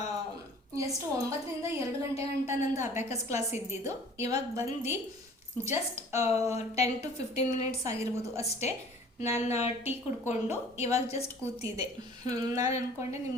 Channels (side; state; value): both; normal; correlation 0.49